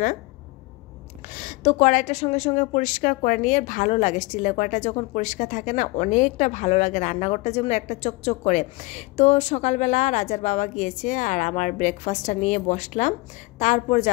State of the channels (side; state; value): right; quieter; 23.8 dB